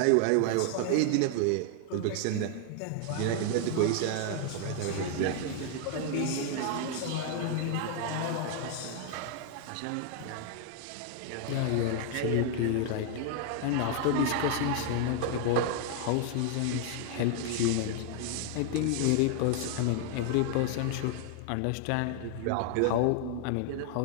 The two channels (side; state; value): both; different; correlation 0.00